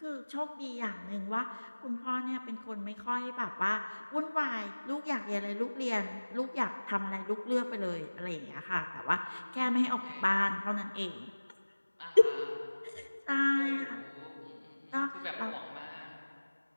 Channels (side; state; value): both; inverted; correlation -1.00